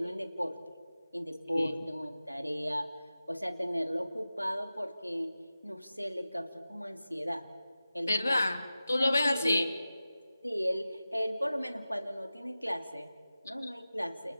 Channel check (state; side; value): inverted; both; correlation -0.94